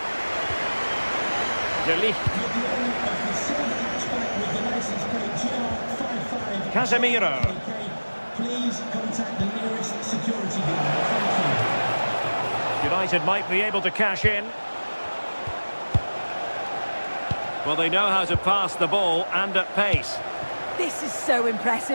De Ligt. Casemiro. Please contact the nearest security guard. Thank you. United might be able to cash in. Well, they know how to pass the ball and at pace. This is so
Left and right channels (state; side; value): inverted; both; correlation -1.00